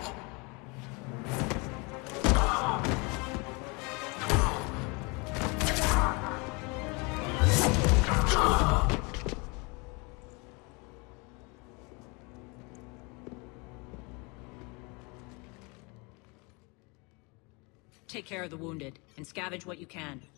Take care of the wounded, and scavenge what you can.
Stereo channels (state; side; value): quieter; right; 29.2 dB